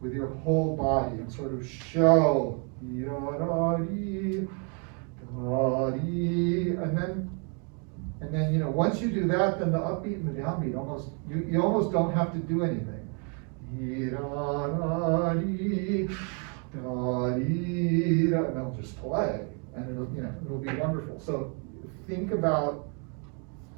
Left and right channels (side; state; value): left; quieter; 38.2 dB